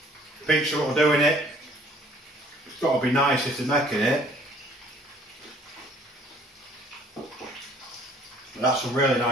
pizza what we're doing it, it's got to be nice if they're making it. That's a really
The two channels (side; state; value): both; normal; correlation 0.57